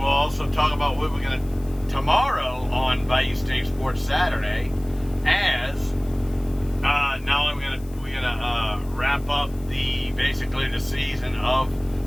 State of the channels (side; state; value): left; noise; hiss, 24 dB below the sound